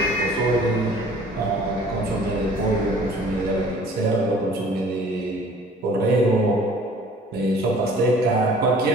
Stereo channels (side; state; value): both; normal; correlation 0.51